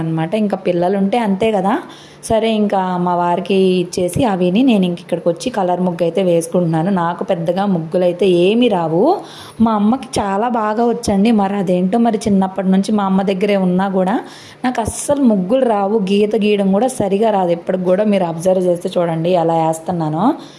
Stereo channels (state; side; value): identical; both; correlation 1.00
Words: ఇంకా పిల్లలు ఉంటే అంతే కదా. సరే ఇంకా మా వారికి ఇచ్చేసి అవిని నేను ఇంక ఇక్కడికి వచ్చి కలర్ ముగ్గు అయితే వేసుకుంటున్నాను. నాకు పెద్దగా ముగ్గులు అయితే ఏమీ రావు. మా అమ్మకి చాలా బాగా వచ్చండి. మరి అదేంటో మరి చిన్నప్పటి నుంచి మా అమ్మ దగ్గరే ఉన్నా కూడా నాకు అస్సలు ముగ్గులు రావు. గీత గీయడం కూడా సరిగా రాదు. ఎప్పటికి కూడా మీరు అబ్జర్వ్ చేస్తే చూడండి ఎలా వేస్తున్నానో.